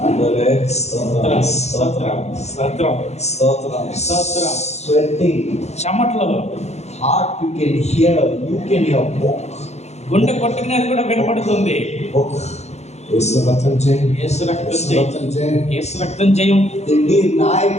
అందరే స్తోత్రం. Sweating. చెమటలు. Heart you can hear. You can hear book. గుండె కొట్టుకునేది కూడా వినపడుతుంది. Book. యేసు రక్తం జయం. యేసు రక్తం జయం. దిండి నాయ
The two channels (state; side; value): late; right; 0.32 ms